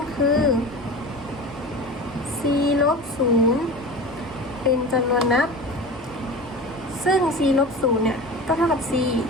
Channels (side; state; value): both; normal; correlation 0.32